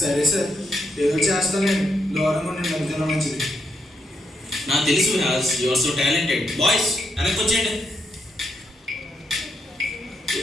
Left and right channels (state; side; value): normal; both; correlation 0.79